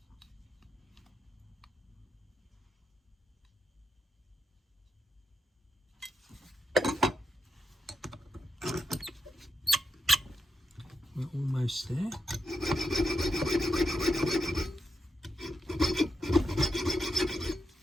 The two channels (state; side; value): normal; both; correlation 0.85